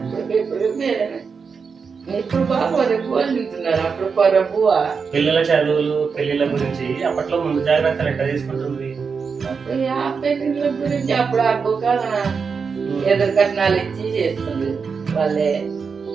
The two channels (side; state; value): left; quieter; 5.5 dB